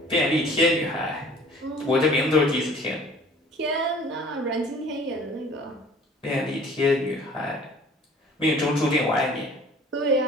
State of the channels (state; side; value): normal; both; correlation 0.50